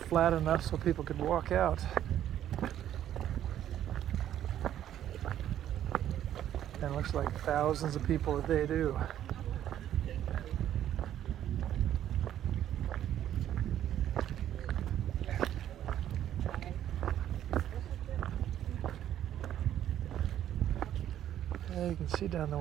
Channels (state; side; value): quieter; left; 11.2 dB